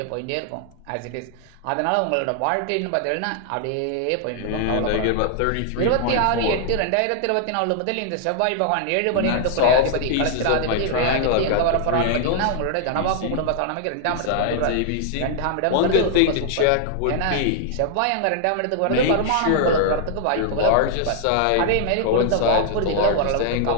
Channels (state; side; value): different; both; correlation 0.00